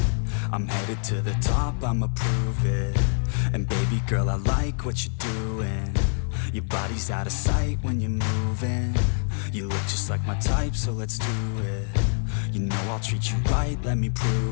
I'm headed to the top, I'ma prove it. And baby girl, I like what you're doing. Your body's out of sight when you're moving. You look just like my type, so let's do it. You know I'll treat you right, let me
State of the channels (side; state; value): right; silent; 57 dB below the other